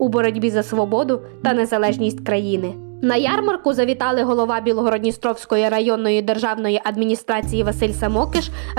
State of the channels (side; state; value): left; silent; digital silence